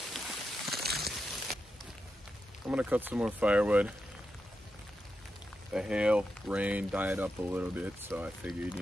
I'm gonna cut some more firewood. The hail, rain died up a little bit, so I figured,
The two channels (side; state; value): both; normal; correlation 0.87